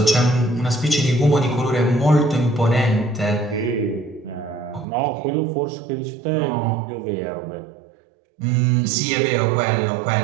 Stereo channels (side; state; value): left; drops out; at 4.9 s